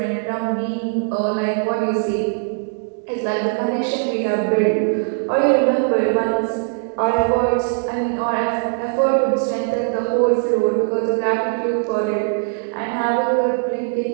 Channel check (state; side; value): silent; left; digital silence